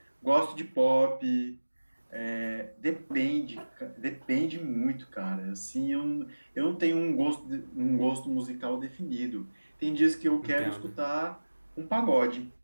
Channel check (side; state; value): both; inverted; correlation -1.00